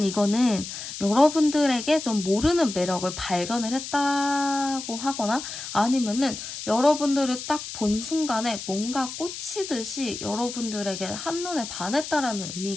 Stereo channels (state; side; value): noise; left; hiss, 9 dB below the sound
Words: 이거는 여러분들에게 좀 모르는 매력을 발견을 했다고 하거나 아니면은 여러분들을 딱 본 순간에 뭔가 꽂히듯이 여러분들에게 한눈에 반했다라는